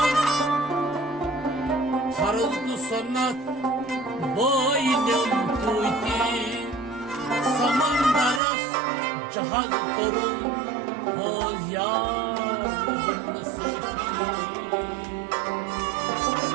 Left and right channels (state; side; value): drops out; left; at 8.4 s